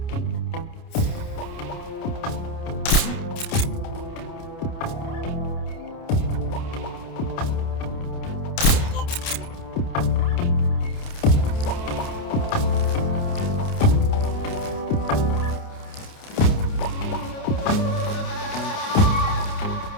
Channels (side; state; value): right; late; 29 ms